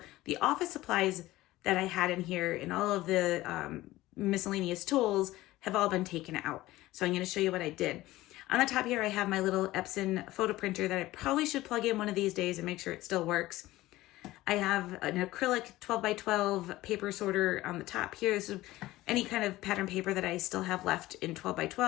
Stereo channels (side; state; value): right; quieter; 17.2 dB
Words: the office supplies that I had in here and all of the miscellaneous tools have all been taken out. So I'm going to show you what I did. On the top here, I have my little Epson photo printer that I probably should plug in one of these days and make sure it still works. I have an acrylic 12x12 paper sorter on the top here. So any kind of pattern paper that I still have left in